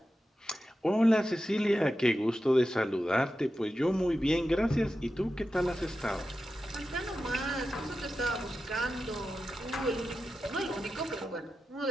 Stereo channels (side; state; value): both; normal; correlation 0.91